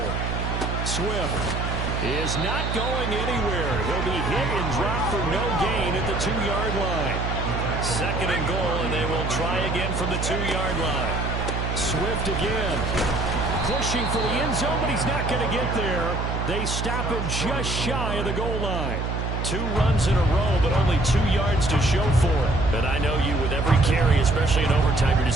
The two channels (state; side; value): noise; right; hum, 2 dB below the sound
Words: Swift is not going anywhere. He'll be hit and dropped for no gain at the 2-yard line. 2nd and goal, and they will try again from the 2-yard line. Swift again. Pushing for the end zone, but he's not going to get there. They stop him just shy of the goal line. 2 runs in a row, but only 2 yards to show for it. And I know you, with every carry, especially in overtime, you're